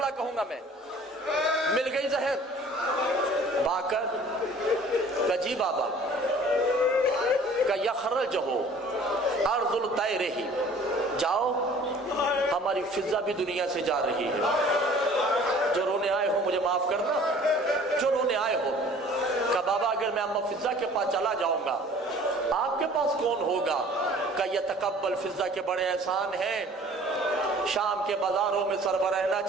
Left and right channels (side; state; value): both; normal; correlation 0.50